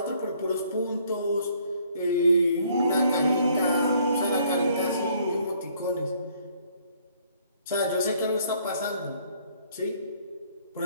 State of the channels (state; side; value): inverted; both; correlation -0.63